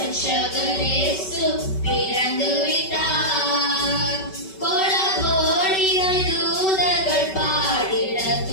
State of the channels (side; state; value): right; late; 5.3 ms